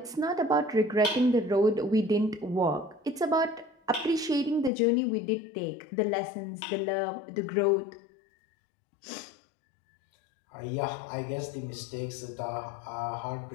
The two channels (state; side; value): drops out; right; at 4.7 s